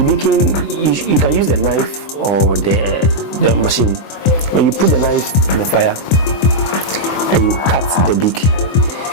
baking, you can use the knife or the machine. When you put the knife in the fire and you cut the beak,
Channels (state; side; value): late; right; 24 ms